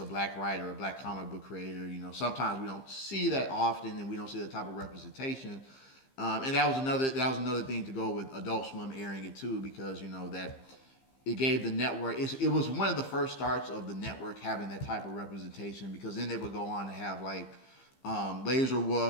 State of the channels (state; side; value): late; right; 15 ms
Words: black writer, a black comic book creator. Sometimes we don't see that often, and we don't see that type of representation. And that was another thing to go with Adult Swim airing it too, because that it gave the network. It was one of the first starts of the network having that type of representation, because then they would go on to have like Laser